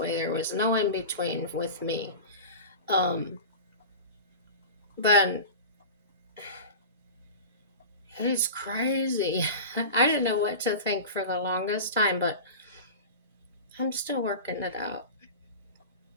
There was no in between with me. Um, but he's crazy. I didn't know what to think for the longest time, but I'm still working it out.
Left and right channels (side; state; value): both; inverted; correlation -0.31